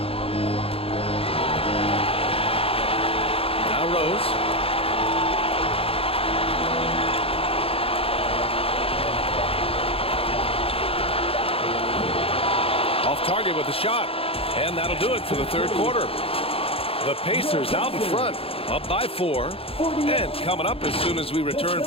Now Rose. Off target with the shot. And that'll do it for the third quarter. The Pacers out in front, up by 4. And coming up as soon as we return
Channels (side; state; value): right; late; 0.27 ms